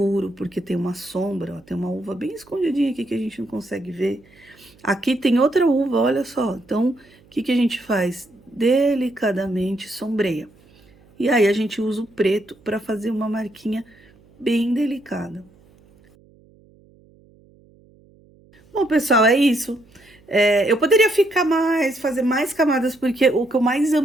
porque tem uma sombra, ó, tem uma uva bem escondidinha aqui que a gente não consegue ver. Aqui tem outra uva, olha só. Então, o que que a gente faz? Delicadamente sombreia. E aí, a gente usa o preto para fazer uma marquinha bem delicada. Bom, pessoal, é isso. Eu poderia ficar mais, fazer mais camadas, porque o que eu mais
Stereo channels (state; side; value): noise; right; hum, 29 dB below the sound